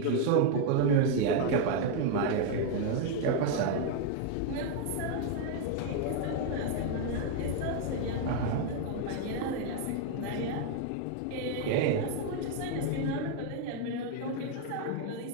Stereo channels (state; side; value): different; both; correlation 0.00